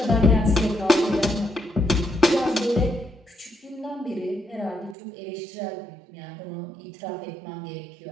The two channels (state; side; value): drops out; left; at 5.0 s